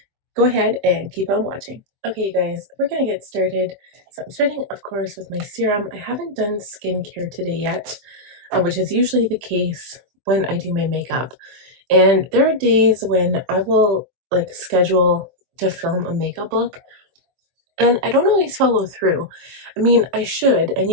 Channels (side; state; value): left; late; 23 ms